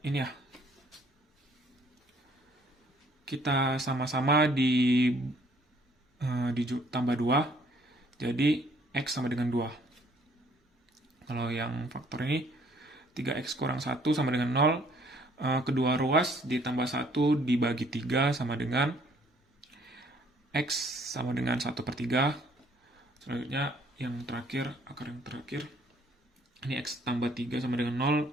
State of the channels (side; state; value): both; normal; correlation 0.62